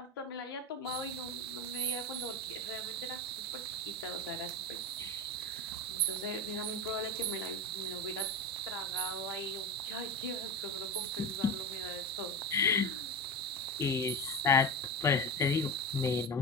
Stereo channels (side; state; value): both; normal; correlation 0.22